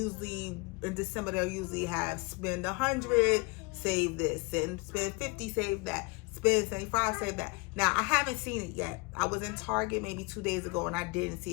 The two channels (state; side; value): quieter; right; 27.9 dB